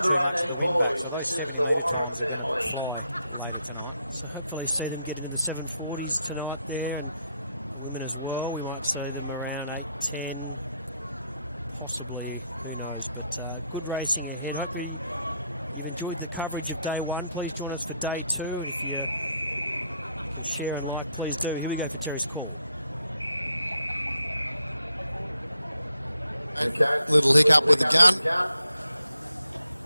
too much of the wind back. So those 70-metre times are going to fly later tonight. So hopefully see them get into the 740s tonight there, and the women as well. We might see them around 8:10, possibly, who knows. But good racing ahead. Hopefully you've enjoyed the coverage of day one. Please join us for day two, and if you can share and like, please do. Here we go for Terry's call. Okay. Little hiccup with the gun.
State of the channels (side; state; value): both; inverted; correlation -0.77